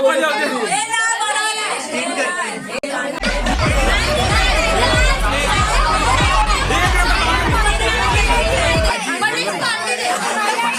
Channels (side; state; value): both; identical; correlation 1.00